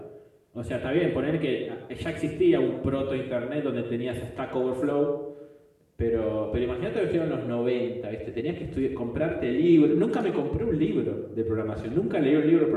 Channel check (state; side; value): identical; both; correlation 1.00